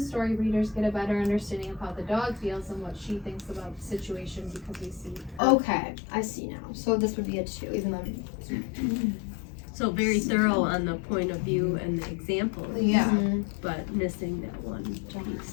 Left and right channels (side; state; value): right; drops out; at 5.4 s